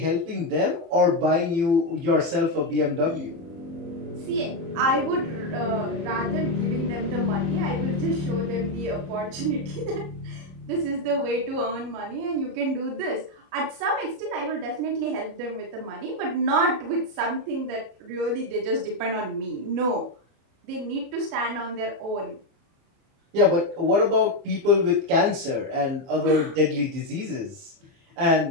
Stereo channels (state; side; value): late; left; 30 ms